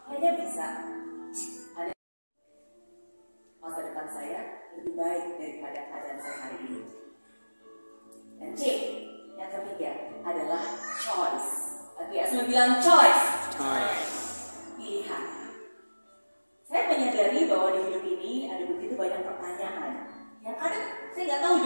kayaknya bisa, Anda masa depan saya lebih baik daripada keadaan saya hari ini. Dan C, yang ketiga adalah choice. Oke, saya bilang choice. Pilihan. Saya menyadari bahwa di hidup ini ada begitu banyak pertanyaan yang kadang saya nggak tahu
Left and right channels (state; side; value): inverted; both; correlation -1.00